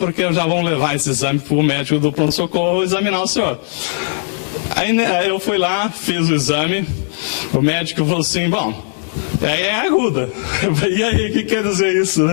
eu já vou levar esse exame para o médico do pronto-socorro examinar o senhor. Aí né, eu fui lá, fiz o exame, o médico falou assim, bom, é aguda. Eu falei, e aí, o que quer dizer isso,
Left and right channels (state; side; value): silent; right; digital silence